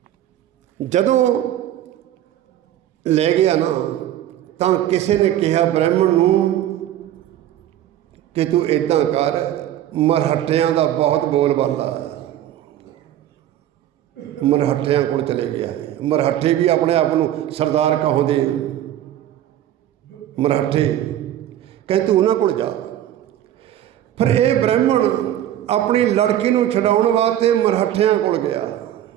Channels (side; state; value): left; quieter; 12.0 dB